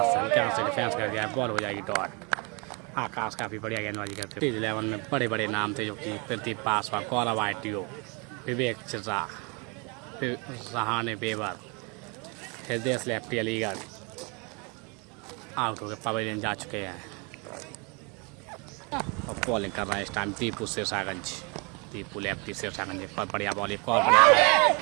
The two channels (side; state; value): left; quieter; 31.3 dB